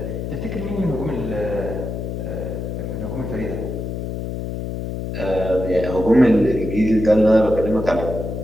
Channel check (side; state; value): left; noise; hum, 5 dB below the sound